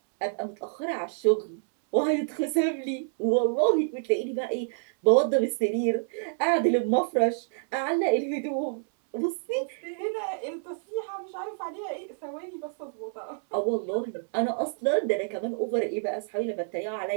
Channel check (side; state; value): left; silent; 59 dB below the other